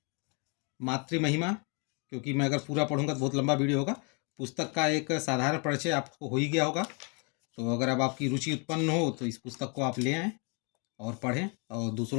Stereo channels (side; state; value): right; quieter; 34.4 dB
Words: मातृ महिमा, क्योंकि मैं अगर पूरा पढ़ूंगा तो बहुत लंबा वीडियो होगा। पुस्तक का एक साधारण परिचय आपको हो ही गया होगा। तो अगर अब आपकी रुचि उत्पन्न हो तो इस पुस्तक को आप ले आएँ और पढ़ें और